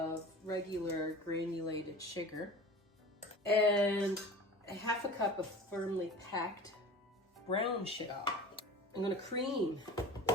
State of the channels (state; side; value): normal; both; correlation 0.37